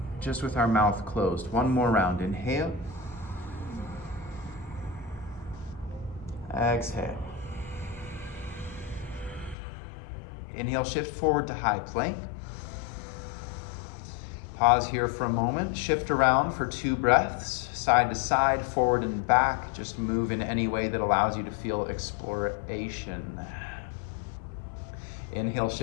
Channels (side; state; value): right; drops out; at 9.6 s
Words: Just with our mouth closed. One more round. Inhale. Exhale. Inhale, shift forward to high plank. Pause here for a moment. Shift around for 2 breaths. Side to side, forward and back. Just move in any way that allows you to feel exploration. Inhale,